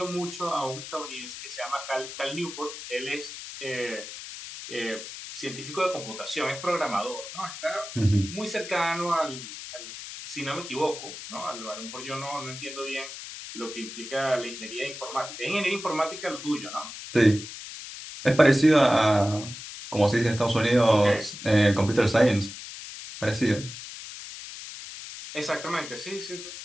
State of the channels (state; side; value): noise; left; hiss, 11 dB below the sound